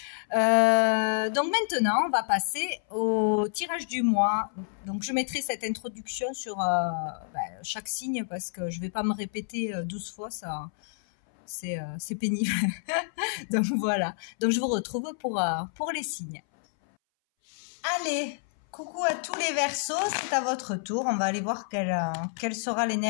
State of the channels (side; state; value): right; silent; 59 dB below the other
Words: Donc maintenant, on va passer au tirage du mois. Donc je mettrai cette introduction sur chaque signe parce que je vais pas me répéter 12 fois, ça c'est pénible. Donc voilà. Donc je vous retrouve pour les signes. Allez, coucou à tous les Verseaux, c'est à votre tour. On va aller voir quelle sera